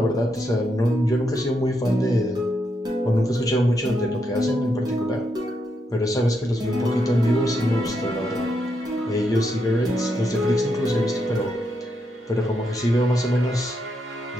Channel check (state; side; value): normal; both; correlation 0.81